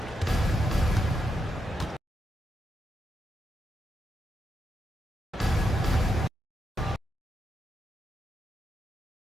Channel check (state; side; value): normal; both; correlation 0.83